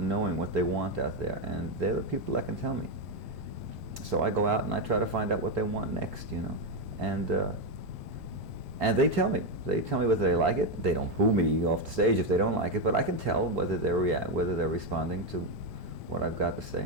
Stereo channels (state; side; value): normal; both; correlation 0.06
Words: what they want out there, and they're the people that can tell me. So I go out and I try to find out what they want next, you know, and they tell me. They tell me whether they like it. They don't boo me off the stage if they don't like it, but I can tell whether they're responding to what I've got to